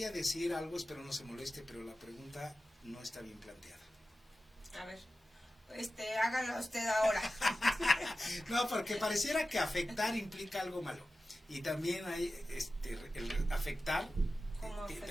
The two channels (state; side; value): normal; both; correlation 0.94